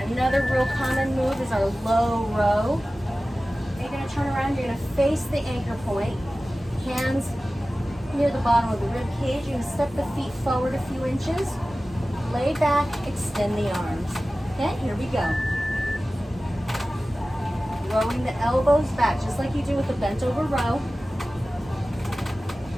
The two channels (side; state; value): both; normal; correlation 0.96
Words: another real common move is our low row. You're gonna turn around, you're gonna face the anchor point. Hands near the bottom of the rib cage. You're gonna step the feet forward a few inches. Lay back, extend the arms. Okay, here we go. Rowing the elbows back, just like you do with the bent over row.